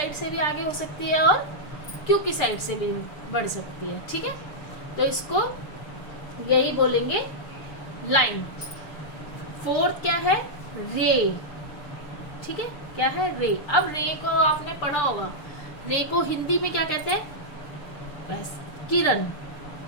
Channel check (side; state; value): right; late; 6.8 ms